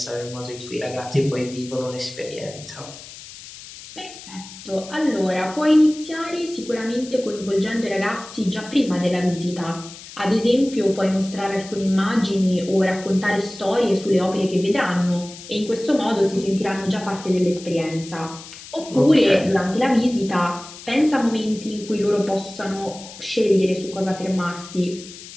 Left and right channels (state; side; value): noise; left; hiss, 16 dB below the sound